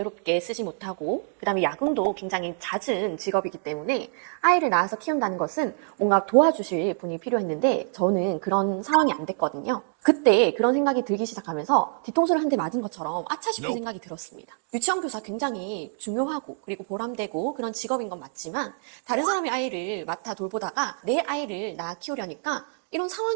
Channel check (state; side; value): silent; left; 61 dB below the other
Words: 쓰지 못하고 그다음에 야근도 굉장히 잦은 직업이기 때문에 아이를 낳아서 키운다는 것은 뭔가 도와주실 분이 필요했는데 저는 그런 상황이 안 됐거든요. 그때 그런 생각이 들기 시작하면서 뒤통수를 한 대 맞은 것처럼 아차 싶은 생각이 들었습니다. 유치원 교사 굉장히 중요하고 그리고 보람되고 그런 직업인 건 맞지만 다른 사람의 아이를 맡아 돌보다가 내 아이를 낳아 키우려니까 이런